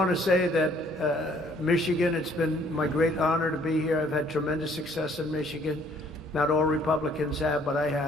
to say that Michigan, it's been my great honor to be here. I've had tremendous success in Michigan. Not all Republicans have, but I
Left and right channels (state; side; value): normal; both; correlation 0.61